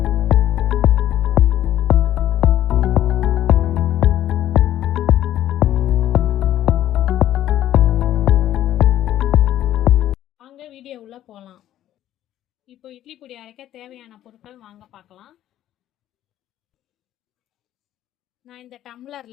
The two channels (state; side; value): quieter; right; 12.4 dB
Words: வாங்க வீடியோ உள்ள போகலாம். இப்போ இட்லி பொடி அரைக்க தேவையான பொருட்கள் வாங்க பார்க்கலாம். நான் இந்த